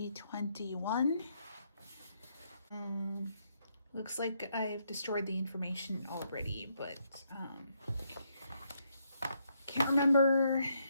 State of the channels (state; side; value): inverted; both; correlation -0.76